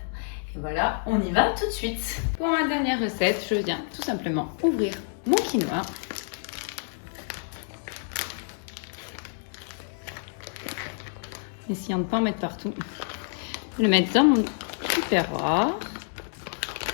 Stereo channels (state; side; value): silent; right; digital silence